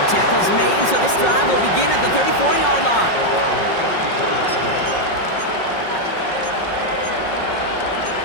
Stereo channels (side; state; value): right; late; 5.4 ms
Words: tackle's made, so this drive will begin at the 34-yard line.